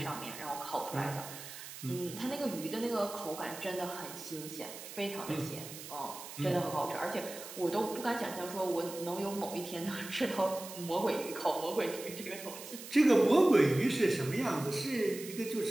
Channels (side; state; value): right; noise; hiss, 12 dB below the sound